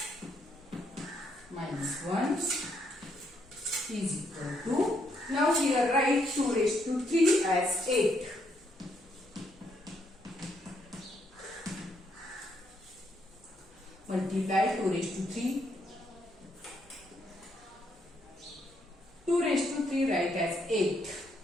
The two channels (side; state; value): both; normal; correlation 0.74